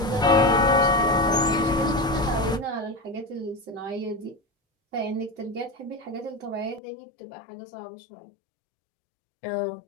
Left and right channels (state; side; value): drops out; right; at 6.8 s